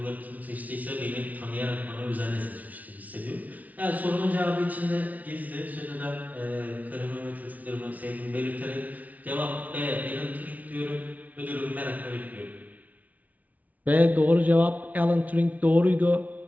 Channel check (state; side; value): late; left; 0.073 ms